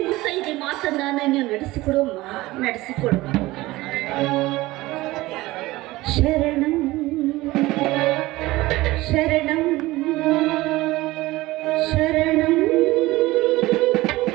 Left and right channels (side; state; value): left; quieter; 19.0 dB